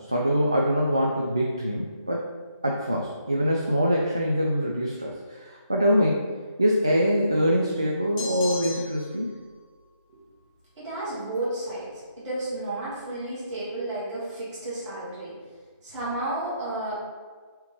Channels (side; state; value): both; inverted; correlation -0.77